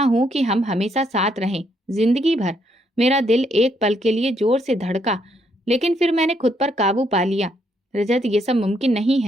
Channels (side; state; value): both; normal; correlation 0.73